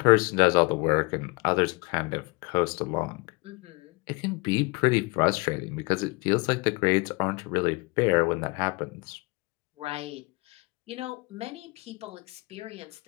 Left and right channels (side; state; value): right; quieter; 27.1 dB